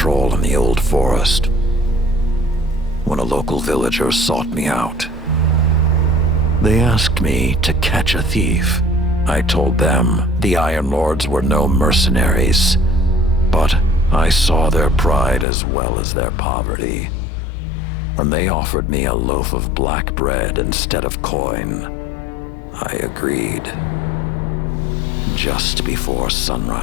in the old forest when a local villager sought me out. They asked me to catch a thief. I told them the Iron Lords were no mercenaries, but I saw their pride as well as their poverty. When they offered me a loaf of black bread instead of coin, I agreed. Just before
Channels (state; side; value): drops out; right; at 15.5 s